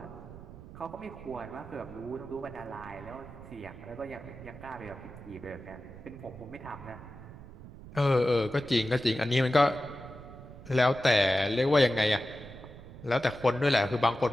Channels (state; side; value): noise; right; rumble, 16 dB below the sound